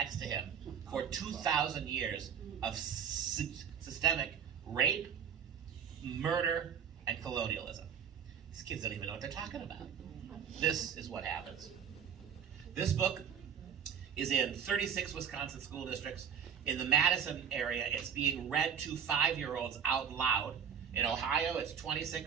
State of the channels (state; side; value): quieter; left; 7.9 dB